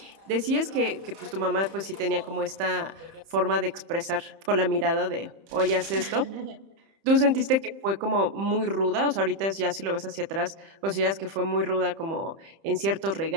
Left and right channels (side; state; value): left; late; 30 ms